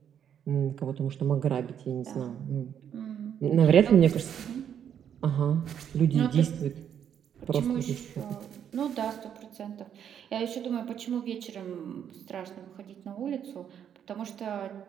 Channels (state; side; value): quieter; left; 8.9 dB